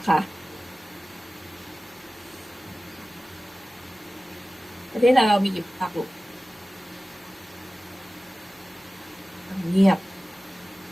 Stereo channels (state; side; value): normal; both; correlation 0.96